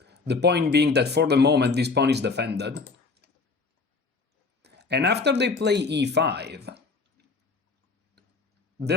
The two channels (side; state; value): right; quieter; 4.2 dB